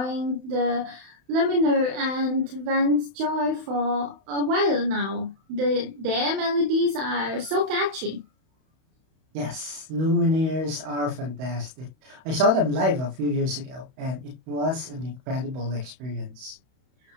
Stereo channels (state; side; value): late; left; 31 ms